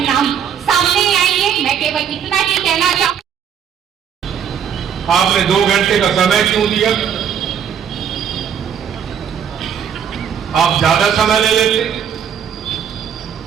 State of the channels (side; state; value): left; quieter; 8.2 dB